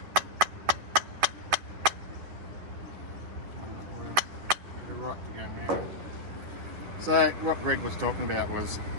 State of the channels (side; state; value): left; late; 11 ms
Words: We're right to go now. So what Greg was talking about was